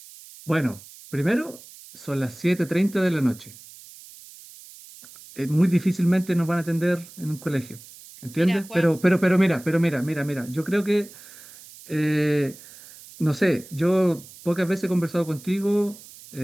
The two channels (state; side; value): noise; right; hiss, 19 dB below the sound